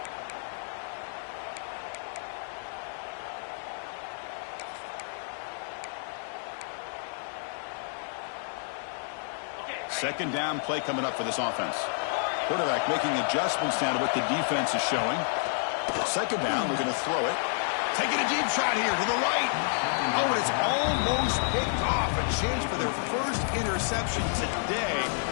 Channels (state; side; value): silent; right; digital silence